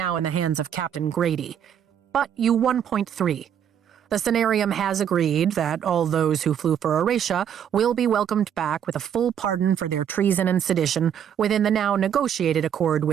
in the hands of Captain Grady, but you won point 3. The Cenarium has agreed that all those who flew for Eratia will be welcomed back with a full pardon for their treason and sedition within the now negotiated accord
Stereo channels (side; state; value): left; quieter; 9.0 dB